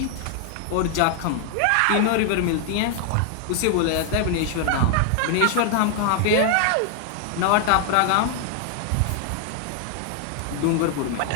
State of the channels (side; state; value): both; different; correlation 0.00